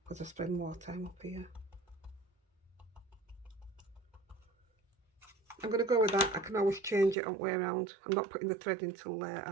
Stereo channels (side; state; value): left; drops out; at 7.2 s